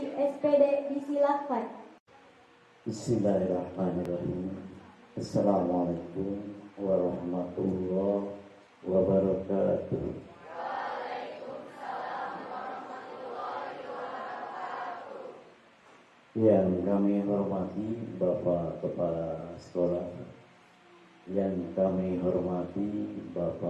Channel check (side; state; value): both; identical; correlation 1.00